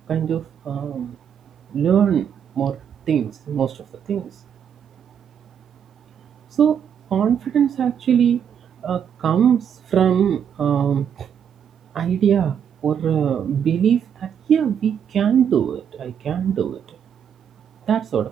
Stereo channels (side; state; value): left; quieter; 8.2 dB